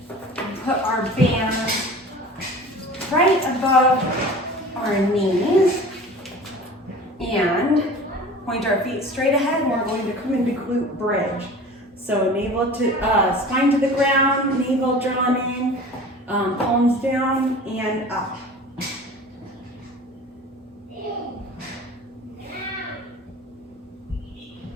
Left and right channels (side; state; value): both; normal; correlation 0.40